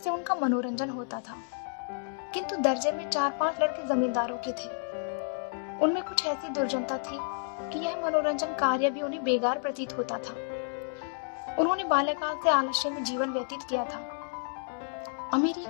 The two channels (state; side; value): silent; right; digital silence